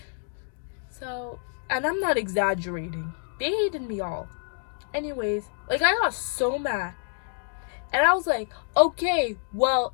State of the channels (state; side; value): silent; right; digital silence